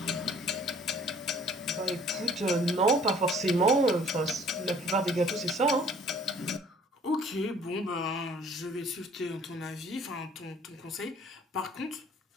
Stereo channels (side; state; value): both; normal; correlation 0.54